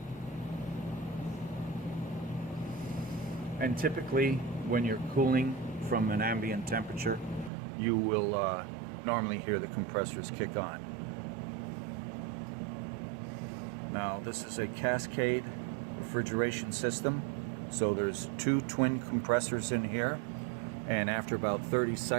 And typically, when you're cooling from an ambient temperature, you will normally hear the compressors kick on. Now, this is a cascade refrigeration system, so there's 2 twin compressors in here, and after about 30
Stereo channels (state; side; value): drops out; left; at 7.5 s